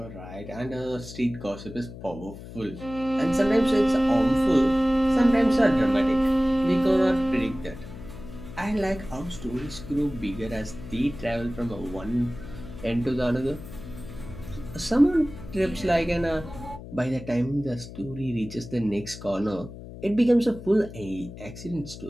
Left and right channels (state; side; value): noise; left; hum, 13 dB below the sound